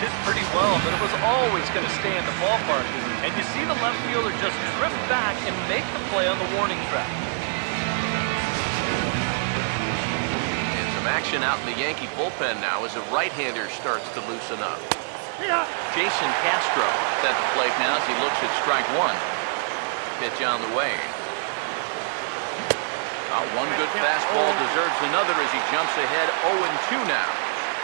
hit pretty well, but it was always going to stay in the ballpark. And you see the left fielder just drift back and make the play on the warning track. And some action out in the Yankee bullpen now as a right-hander starts to loosen up. Jason Castro is at the plate now as he looks at strike one. Pitch on the way. One good fastball deserves another as he jumps ahead 0-2 now.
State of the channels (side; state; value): left; silent; 58 dB below the other